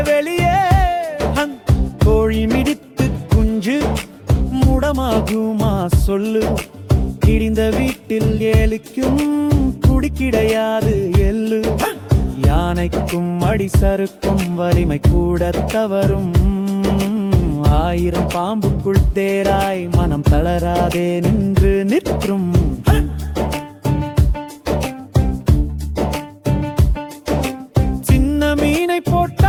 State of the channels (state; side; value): identical; both; correlation 1.00